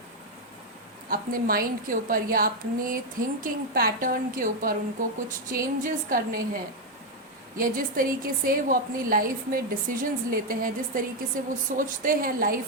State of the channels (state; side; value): normal; both; correlation 0.03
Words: अपने माइंड के ऊपर या अपने थिंकिंग पैटर्न के ऊपर उनको कुछ चेंजेस करने हैं, या जिस तरीके से वो अपनी लाइफ में डिसीजंस लेते हैं, जिस तरीके से वो सोचते हैं